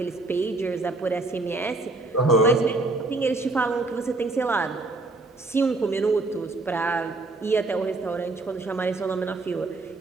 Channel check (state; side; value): quieter; left; 3.2 dB